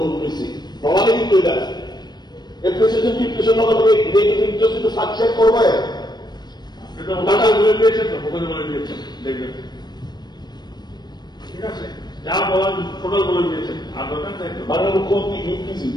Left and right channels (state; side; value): late; right; 0.20 ms